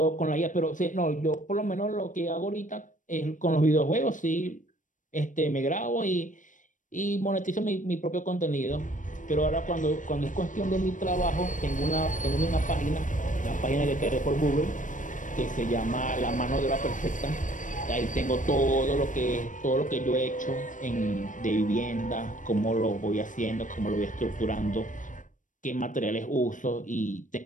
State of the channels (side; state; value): right; late; 0.37 ms